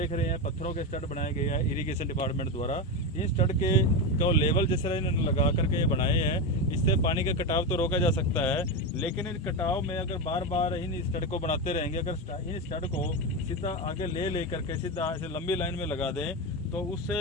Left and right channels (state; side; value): normal; both; correlation 0.14